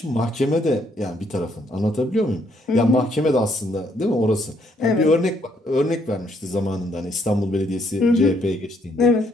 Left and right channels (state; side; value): normal; both; correlation 0.71